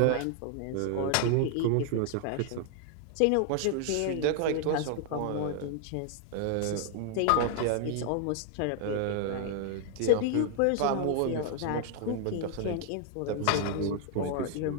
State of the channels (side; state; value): both; different; correlation 0.00